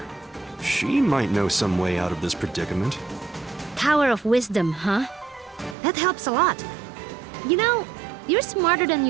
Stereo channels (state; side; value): drops out; left; at 5.8 s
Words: She might know some way out of this predicament. Tower of Wisdom, huh? That helps a lot. You know, you're smarter than